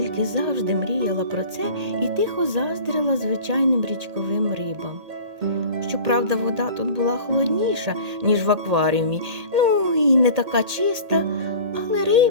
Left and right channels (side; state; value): left; late; 2.1 ms